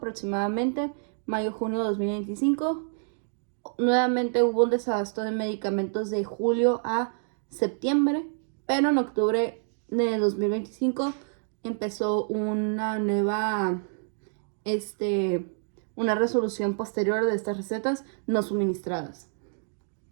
mayo-junio de 2025. Nuevamente hubo un desabasto de medicamentos de julio a septiembre, pero en octubre de 2025 empezó una nueva, una resolución posterior de estas recetas no suministradas.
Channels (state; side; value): silent; left; digital silence